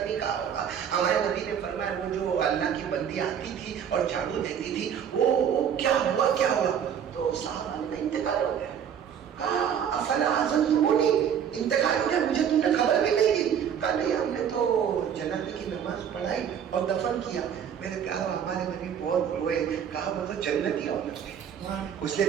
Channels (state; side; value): quieter; left; 8.4 dB